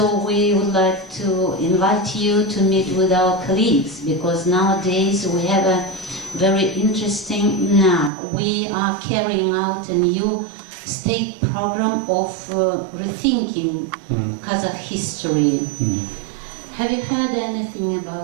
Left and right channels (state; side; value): drops out; left; at 8.1 s